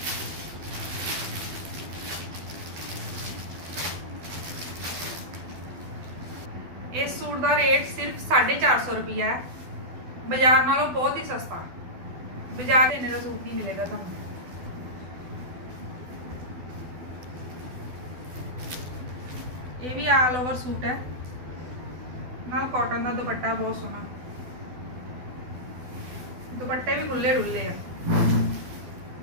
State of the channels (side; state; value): left; late; 12 ms